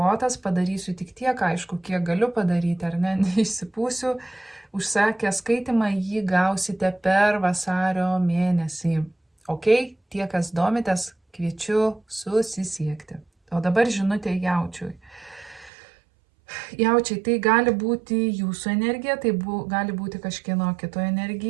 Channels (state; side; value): drops out; left; at 15.7 s